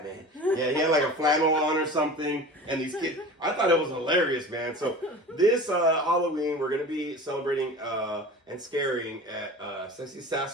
man. Yeah, he had like a flannel on or something. And these kids, I thought it was hilarious, man. So this Halloween, we're going to be celebrating and scaring at Sexy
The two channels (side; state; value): both; normal; correlation 0.37